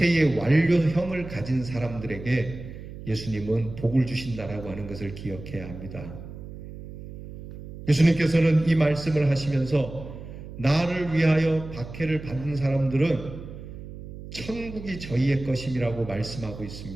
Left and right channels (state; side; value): noise; right; hum, 13 dB below the sound